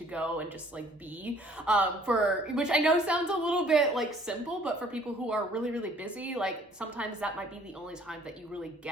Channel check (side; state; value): both; normal; correlation 0.57